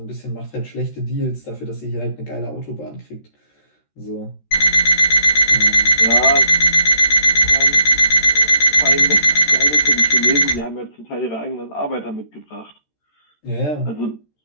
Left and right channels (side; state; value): right; late; 13 ms